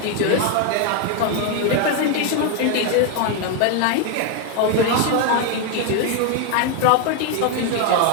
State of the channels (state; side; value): different; both; correlation 0.01